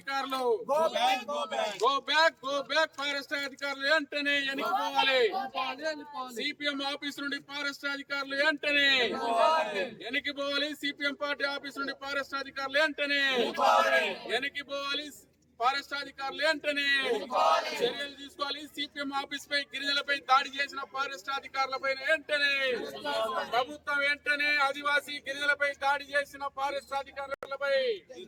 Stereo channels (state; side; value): identical; both; correlation 1.00